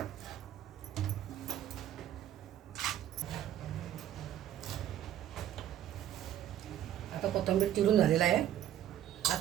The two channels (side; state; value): left; quieter; 11.7 dB